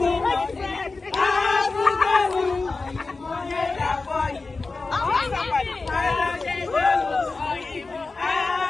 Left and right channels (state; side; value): quieter; right; 3.8 dB